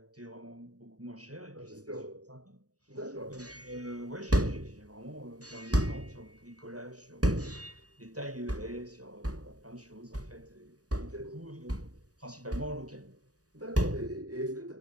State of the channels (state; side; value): late; left; 0.67 ms